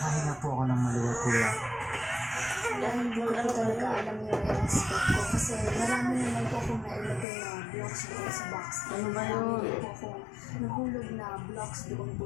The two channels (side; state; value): right; drops out; at 7.2 s